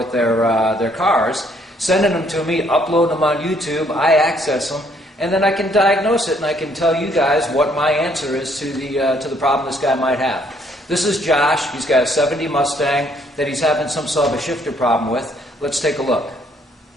their cars, sending them to me, uploading them on YouTube. I access them, and then I can diagnose it, and I can tell you guys what my answer is to the problem this guy might have. This is Josh. He's got a '70 Mustang that he's having some sort of a shifter problem with. Let's take a look.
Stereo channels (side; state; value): both; normal; correlation 0.66